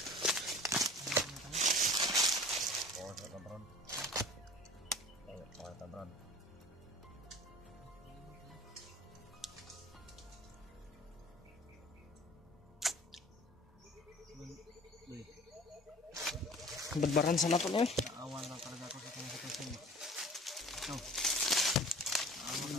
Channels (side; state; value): both; normal; correlation 0.43